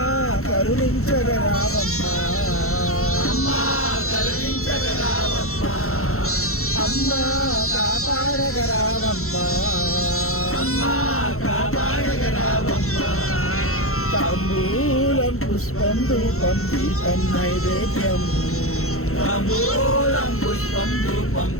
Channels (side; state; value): right; late; 0.63 ms